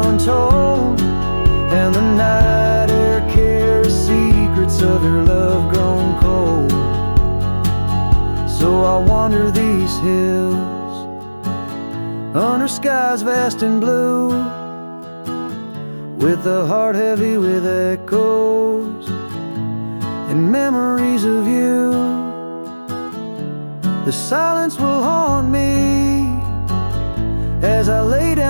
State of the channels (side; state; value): both; inverted; correlation -1.00